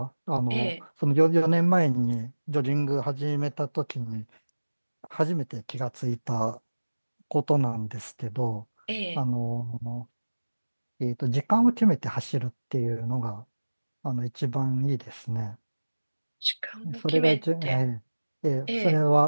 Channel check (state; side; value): inverted; both; correlation -1.00